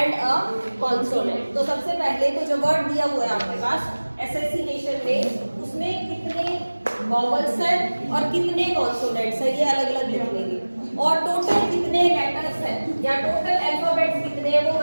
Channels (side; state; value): both; inverted; correlation -1.00